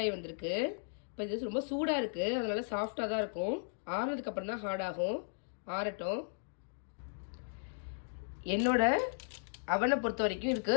ஆகி வந்திருக்கு. இப்போ இது ரொம்ப சூடாக இருக்குது, அதனால சாஃப்டாக தான் இருக்கும். ஆறுனதுக்கப்புறம் தான் ஹார்ட் ஆகும். ஆறட்டும். என்னோட அவனை பொறுத்த வரைக்கும் இதுக்கு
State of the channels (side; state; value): right; silent; digital silence